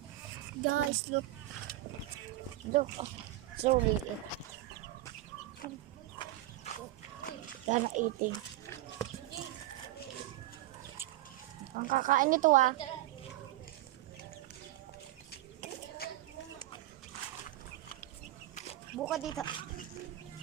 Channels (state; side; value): quieter; left; 15.8 dB